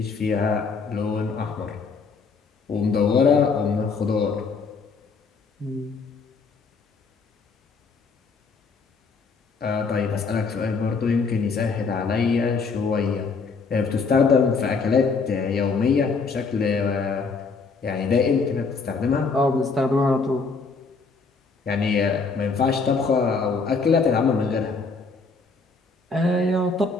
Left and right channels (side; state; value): right; quieter; 4.6 dB